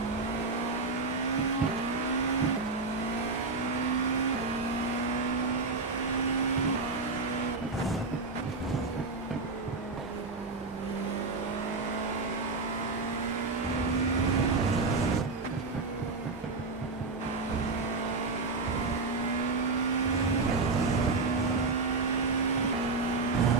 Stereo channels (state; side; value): quieter; left; 3.8 dB